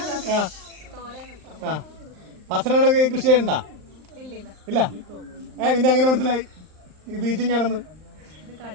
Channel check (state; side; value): late; left; 39 ms